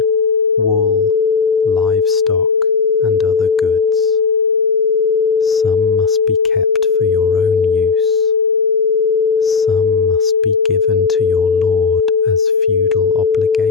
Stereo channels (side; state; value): right; quieter; 5.1 dB